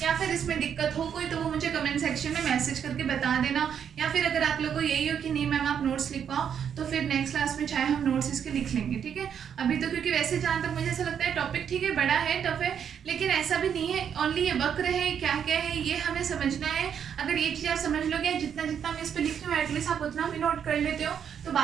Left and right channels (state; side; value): quieter; left; 8.2 dB